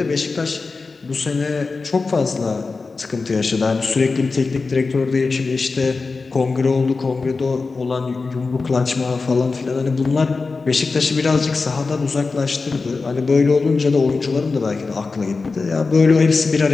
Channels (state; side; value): quieter; right; 4.1 dB